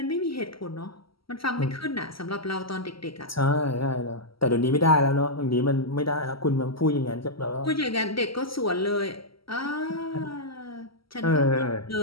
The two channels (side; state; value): right; late; 0.75 ms